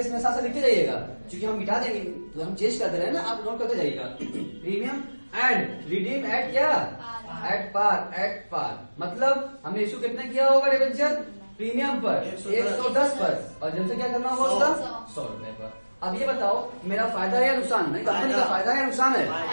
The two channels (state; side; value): inverted; both; correlation -1.00